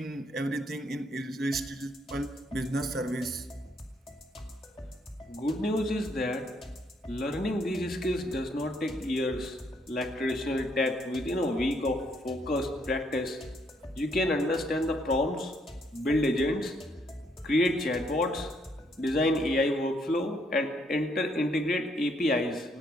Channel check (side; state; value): both; normal; correlation 0.71